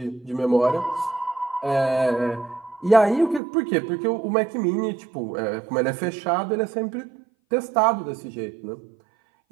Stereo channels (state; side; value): drops out; left; at 3.4 s